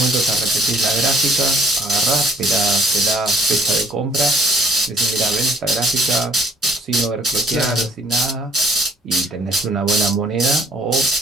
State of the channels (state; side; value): normal; both; correlation 0.58